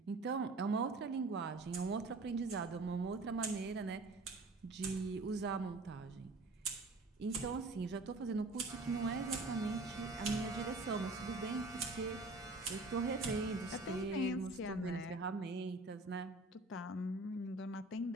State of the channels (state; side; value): quieter; left; 3.1 dB